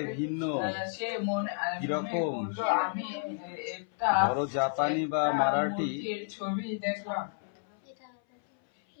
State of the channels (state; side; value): silent; right; 57 dB below the other